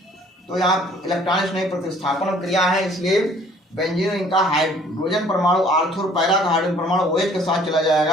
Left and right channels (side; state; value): both; normal; correlation 0.56